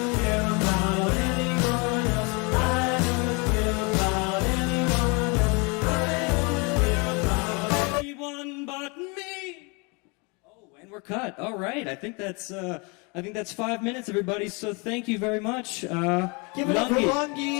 Anyone but me. Oh, and we're cut. All right. I think that's 5 minutes, everybody. So thank you very much. Give it up for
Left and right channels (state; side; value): quieter; right; 30.6 dB